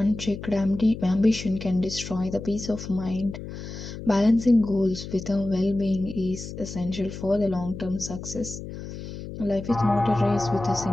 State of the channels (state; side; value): noise; left; hum, 10 dB below the sound